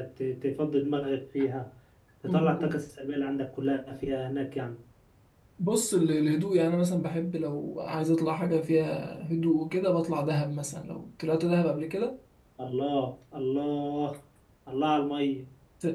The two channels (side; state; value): both; identical; correlation 1.00